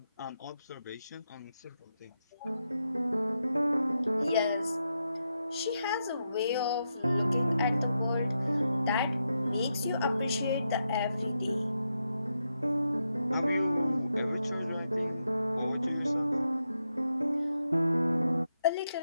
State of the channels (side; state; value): both; inverted; correlation -0.84